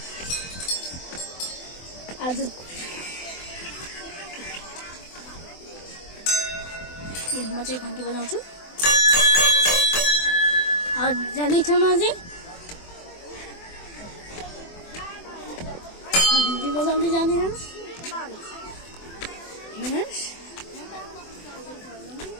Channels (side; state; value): right; late; 24 ms